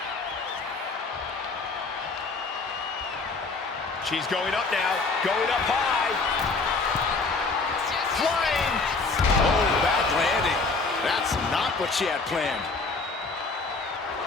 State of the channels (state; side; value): quieter; right; 4.0 dB